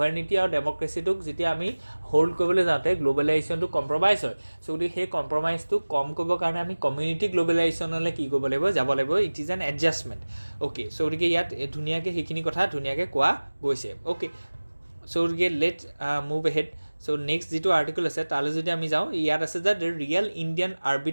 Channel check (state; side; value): inverted; both; correlation -1.00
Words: আৰু ডেম'ক্ৰেচিটোক যেতিয়া আমি হোল্ড কৰিবলৈ যাওঁতে গ্ল'বেলাইজেশ্যনটো কম্প্ৰমাইজ হয়। চ' গতিকে সেই কম্প্ৰমাইজটো কম কৰিবৰ কাৰণে আমি কমিউনিটি গ্ল'বেলাইজেশ্যনলৈ কি কৰিব লাগিব, যাব লাগিব। It is an adjustment. Okay. So' গতিকে ইয়াত ধুনীয়াকৈ সেইখিনি কথা ধুনীয়াকৈ কোৱা গৈছে। অ'কে। চ' গতিকে let move ahead. So' next যিটো আৰ্টিকল আছে তালৈ যদি আমি যাওঁ, ইয়াত আছে যে the real Indian